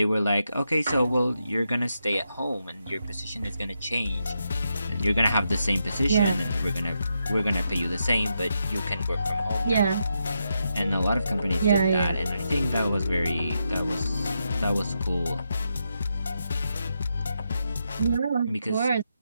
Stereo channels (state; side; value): inverted; both; correlation -0.84